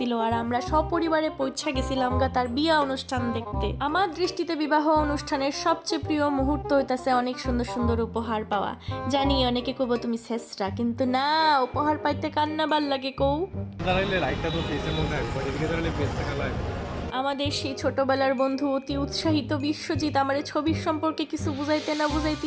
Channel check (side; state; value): both; identical; correlation 1.00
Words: আর আমরা সপরিবারে পৌঁছা গেছিলাম গা তার বিয়া অনুষ্ঠান দেখতে। আমার দৃষ্টিতে বিবাহ অনুষ্ঠানের সবচেয়ে প্রিয় মুহূর্ত হইতাছে অনেক সুন্দর সুন্দর উপহার পাওয়া। জানি অনেকে কব তুমি শেষরা, কিন্তু না, উপহার পাইতে কান্না ভাল লাগে কৌ। আমাদের সেই ছোটবেলার বন্ধু অতি উৎসাহিত বিশ্বজিৎ আমার ছবির সম্পর্কে কিছু বুঝাইতে না